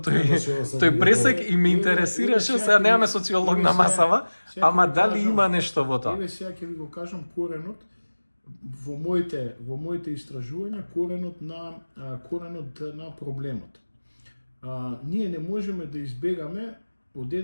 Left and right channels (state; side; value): inverted; both; correlation -1.00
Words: пресек и ме интересираше, сега немаме социолог на масава, ама дали има нешто во тоа? Еве сега ќе ви го кажам коренот во моите истражувања, коренот на проблемот. Ние не можеме да избегаме од